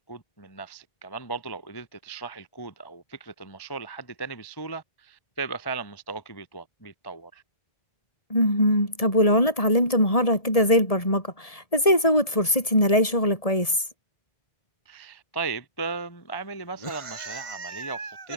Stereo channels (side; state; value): right; late; 1.7 ms